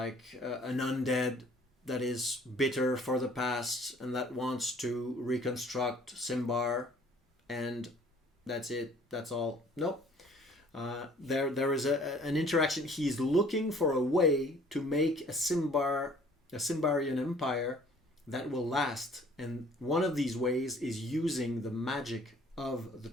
an undead that is bitter for the past and that wants to reconstruct Simbar, and that's it. That's all. Nope. There is an interaction. He's looking for a way to make a Simbarian empire that will last, and one of these ways is using the magic of the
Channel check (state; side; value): normal; both; correlation 0.55